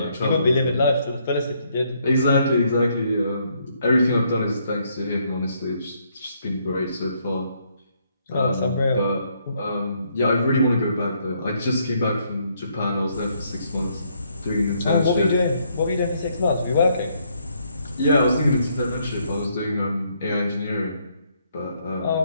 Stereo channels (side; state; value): both; inverted; correlation -0.71